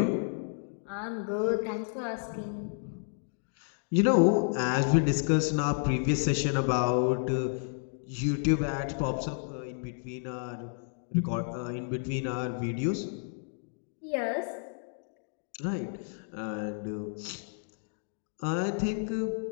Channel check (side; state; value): right; silent; 57 dB below the other